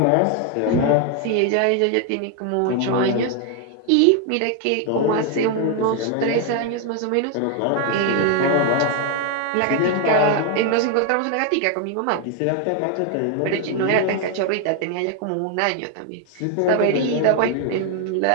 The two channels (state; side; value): different; both; correlation 0.01